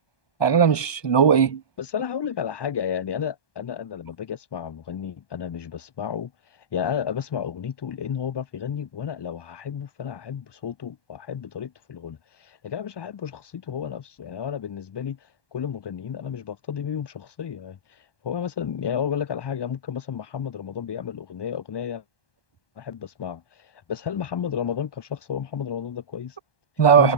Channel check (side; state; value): right; late; 1.2 ms